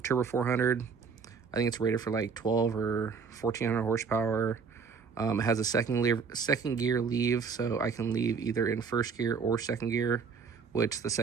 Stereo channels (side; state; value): left; quieter; 5.7 dB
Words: 400. I think it's rated for like 12 or 1400 horsepower. It has a second gear leave, so I can leave either in first gear or second gear, which the